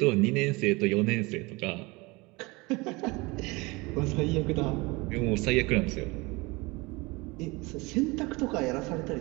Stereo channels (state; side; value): quieter; left; 24.6 dB